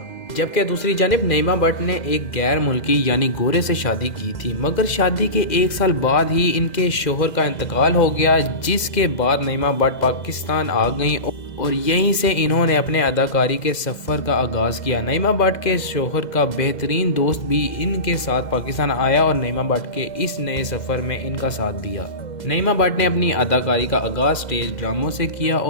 जबकि दूसरी जानिब नईमा भट्ट ने एक गैर मुल्की यानी गोरे से शादी की थी, मगर शादी के 1 साल बाद ही इनके शोहर का इंतकाल हो गया, जिसके बाद नईमा भट्ट पाकिस्तान आ गईं और यहीं से इन्होंने अपने अदाकारी के सफ़र का आगाज़ किया। नईमा भट्ट के शोहर का बेहतरीन दोस्त भी इनके साथ पाकिस्तान आया और नईमा भट्ट के इस नए सफ़र में इनका साथ दिया। नईमा भट्ट ने अपनी अदाकारी का आगाज़ स्टेज ड्रामों से किया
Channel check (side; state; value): right; late; 2.0 ms